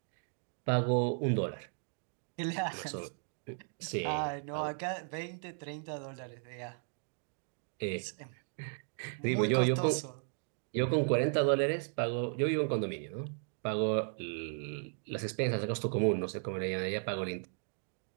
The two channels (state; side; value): silent; left; 54 dB below the other